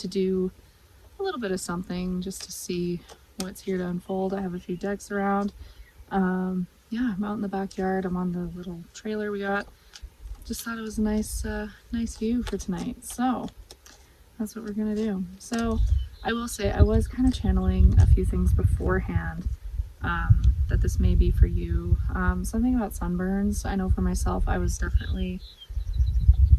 do a little bit of something just to see what's here to unfold. I have a few decks around. Yeah, I'm out in the backyard. I'm on the little trailer we got. Just thought it was a nice view for tonight. So that's what we're gonna do. So I will say I was kind of channeling a few things beforehand that this may be for you. Something about sunburns. I know for myself I was definitely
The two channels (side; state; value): both; identical; correlation 1.00